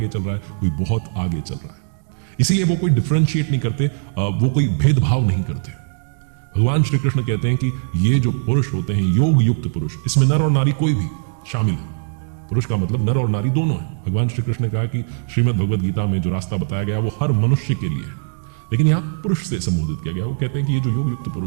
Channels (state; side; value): silent; left; digital silence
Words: चल रहा है, कोई बहुत आगे चल रहा है। इसीलिए वो कोई डिफरेंशिएट नहीं करते, वो कोई भेदभाव नहीं करते। भगवान श्री कृष्ण कहते हैं कि ये जो पुरुष होते हैं, योग युक्त पुरुष, इसमें नर और नारी कोई भी शामिल है। पुरुष का मतलब नर और नारी दोनों है। भगवान श्री कृष्ण ने कहा कि श्रीमद् भगवद गीता में जो रास्ता बताया गया वो हर मनुष्य के लिए है, लेकिन यहाँ पुरुष से संबोधित किया गया। वो कहते हैं कि ये जो योग युक्त